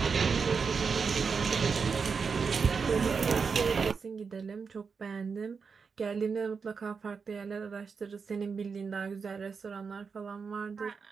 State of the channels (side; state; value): left; quieter; 5.4 dB